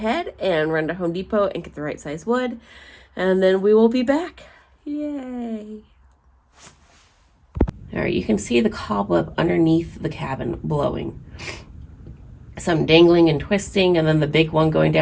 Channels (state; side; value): identical; both; correlation 1.00